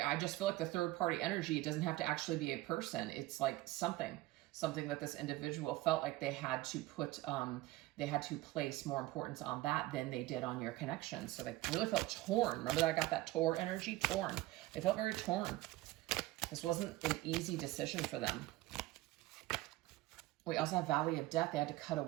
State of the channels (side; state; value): left; quieter; 17.8 dB